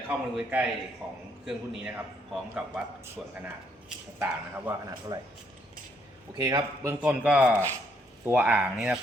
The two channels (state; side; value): normal; both; correlation 0.71